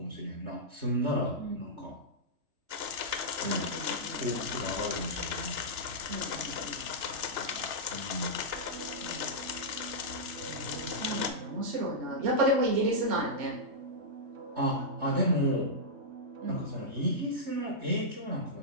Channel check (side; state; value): left; late; 2.9 ms